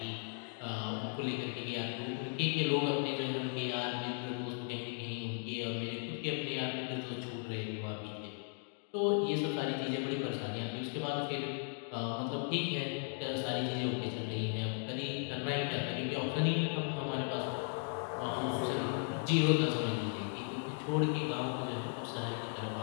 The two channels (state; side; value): silent; right; 53 dB below the other